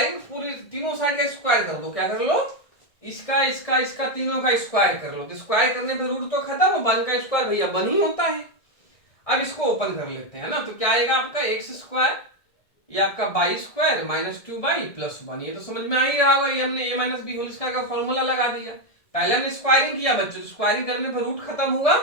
पूरी तीनों साइड का स्क्वायर कर दो, क्या कर लो, इसका इसका इसका तीनों का स्क्वायर कर लो, तो स्क्वायर करने पे रूट तो खत्म, वन का स्क्वायर भैया वन ही होता है। अब इसको ओपन कर लेते हैं ना, तो क्या आएगा आपका एक्स स्क्वायर, ये आपका by square minus two by plus one, ये तो समझ में आ ही रहा होगा, ये हमने ए माइनस बी होल स्क्वायर का फॉर्मूला लगा दिया। पहले हमने स्क्वायरिंग किया बच्चों, स्क्वायरिंग करने पर रूट खत्म हुआ,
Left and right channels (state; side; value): late; right; 1.9 ms